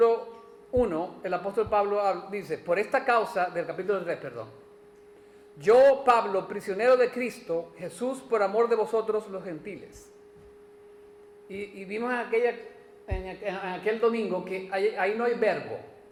1, el apóstol Pablo dice, por esta causa, del capítulo 3, perdón. Yo, Pablo, prisionero de Cristo, Jesús, por amor de vosotros los gentiles. Y vimos en aquel domingo que ahí no hay verbo,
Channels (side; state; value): both; identical; correlation 1.00